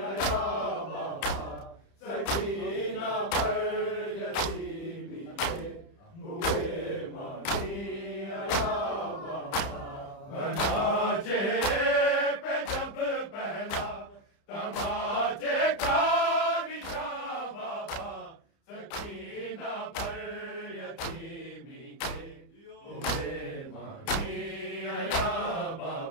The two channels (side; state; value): right; late; 30 ms